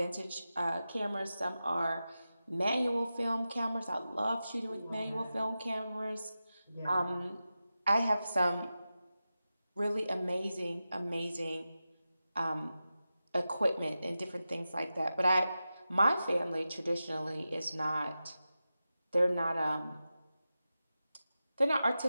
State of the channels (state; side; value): inverted; both; correlation -0.93